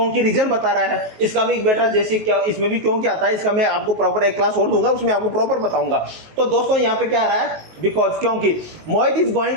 रीजन बता रहा है। इसका भी बेटा जैसे क्या, इसमें भी क्यों क्या आता है, इसका मैं आपको प्रॉपर एक क्लास और दूंगा, उसमें आपको प्रॉपर बताऊंगा। तो दोस्तों यहाँ पे क्या आ रहा है? बिकॉज, क्योंकि। Mohit is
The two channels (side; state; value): left; late; 19 ms